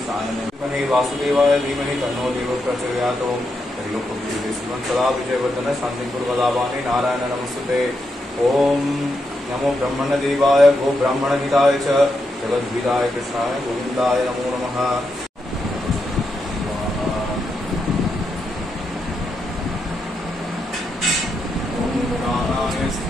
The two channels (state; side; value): normal; both; correlation 0.83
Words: सायनं वासुदेवाय धीमहि तन्नो देवः प्रचोदयात् सदा विजयवर्धन शांतिपुरवदावाने नारायण नमस्ते ओम नमो ब्रह्मण देवाय गो ब्राह्मण हिताय च जगद्विदाय कृष्णाय गोविंदाय नमो नमः ओम प्राणाय